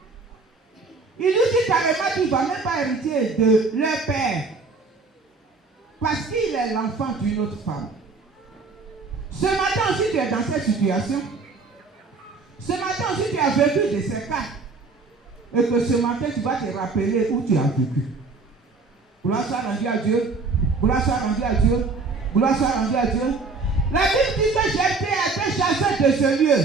Il nous dit carrément qu'il ne va même pas hériter de leur père. Parce qu'il est l'enfant d'une autre femme. Ce matin aussi tu es dans cette situation. Ce matin aussi tu as vécu de ces cas. Et que ce matin tu vas te rappeler où tu as vécu. Gloire soit rendue à Dieu. Gloire soit rendue à Dieu. Gloire soit rendue à Dieu. La Bible dit que Jephthé a été chassé de ce lieu.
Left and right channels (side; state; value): left; quieter; 4.1 dB